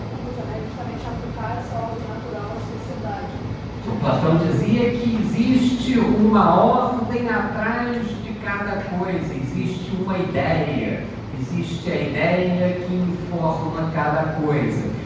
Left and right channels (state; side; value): identical; both; correlation 1.00